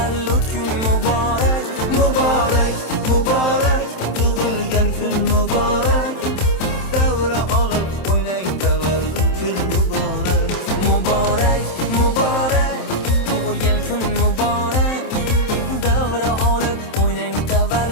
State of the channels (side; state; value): right; late; 27 ms